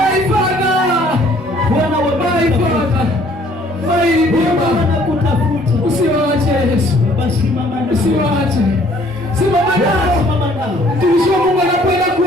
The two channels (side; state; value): both; normal; correlation 0.59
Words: Father, Bwana wa my Father, my Redeemer, wanakutafuta. Usiwaache Yesu, usiwaache, simama nao. Mtumishi wa Mungu anakwenda